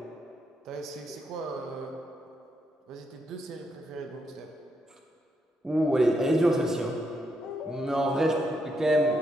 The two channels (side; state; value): both; normal; correlation 0.79